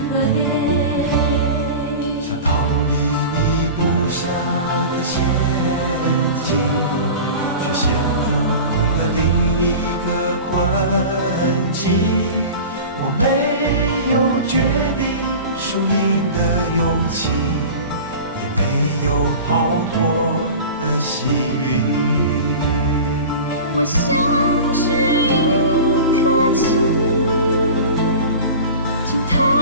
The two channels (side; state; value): both; inverted; correlation -0.34